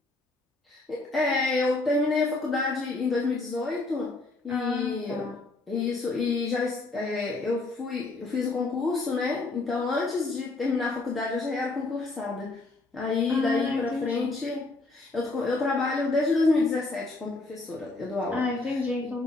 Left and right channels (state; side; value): quieter; right; 3.3 dB